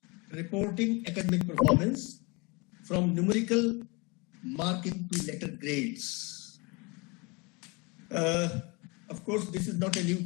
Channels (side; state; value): right; quieter; 28.1 dB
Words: reporting academic performance from numerical marking to letter grades. Of course, this is not a new